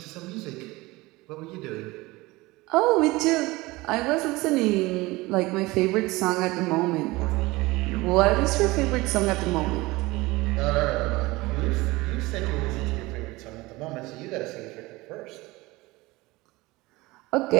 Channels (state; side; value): quieter; left; 21.2 dB